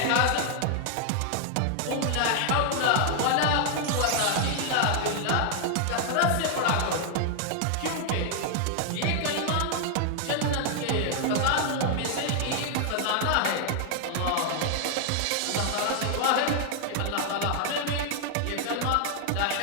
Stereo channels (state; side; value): different; both; correlation 0.00